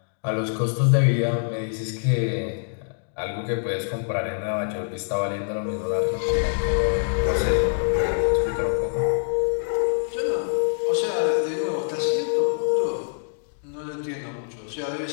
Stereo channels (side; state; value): right; silent; digital silence